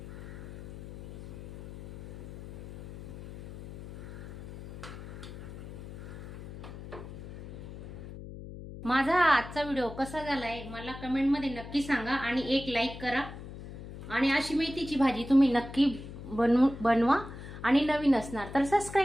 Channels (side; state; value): left; noise; hum, 12 dB below the sound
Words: माझा आजचा व्हिडिओ कसा झालाय मला कमेंटमध्ये नक्की सांगा आणि एक लाईक करा. आणि अशी मेथीची भाजी तुम्ही नक्की बनवा आणि नवीन असणार तर